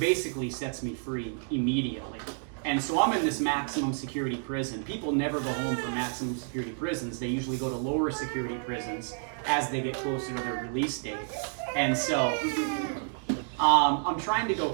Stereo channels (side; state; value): left; silent; 58 dB below the other